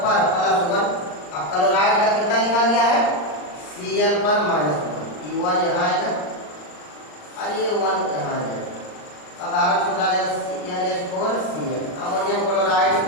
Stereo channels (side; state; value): right; late; 39 ms